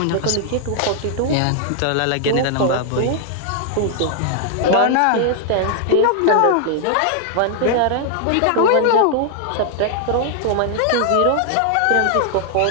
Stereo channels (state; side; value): different; both; correlation 0.00